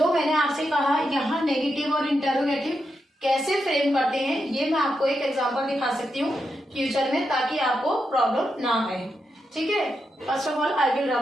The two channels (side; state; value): both; normal; correlation 0.85